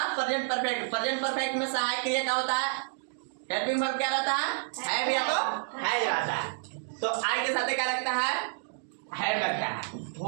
प्रेजेंट परफेक्ट में सहायक क्रिया क्या होता है? हेल्पिंग वर्ब क्या रहता है? हैव या तो हैज रहता है। तो आई के साथ क्या लगता है? हैव लगता है।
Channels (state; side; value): silent; left; digital silence